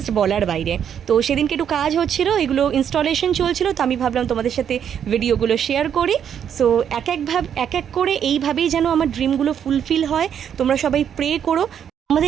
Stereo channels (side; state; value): left; quieter; 8.7 dB